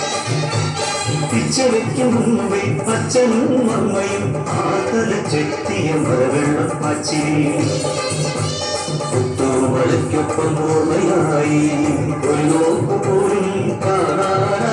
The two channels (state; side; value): identical; both; correlation 1.00